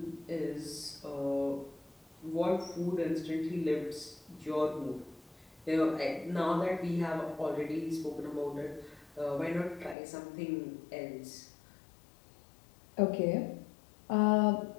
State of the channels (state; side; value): drops out; right; at 10.0 s